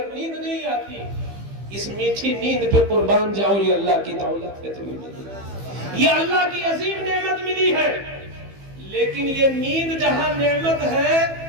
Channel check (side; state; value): left; late; 15 ms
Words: نیند نہیں آتی۔ اس میٹھی نیند پہ قربان جاؤ، یہ اللہ کی دولت ہے تمہیں ملی، یہ اللہ کی عظیم نعمت ملی ہے۔ لیکن یہ نیند جہاں نعمت ہے